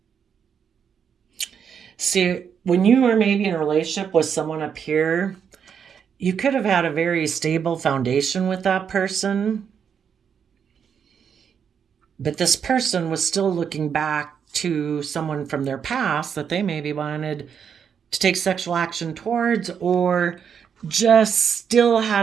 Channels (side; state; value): left; quieter; 7.4 dB